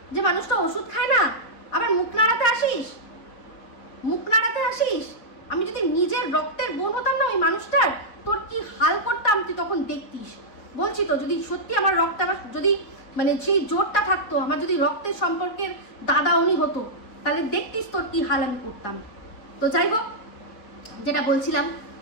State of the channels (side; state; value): right; late; 4.8 ms